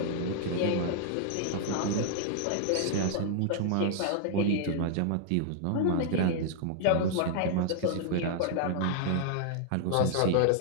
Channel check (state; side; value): different; both; correlation 0.00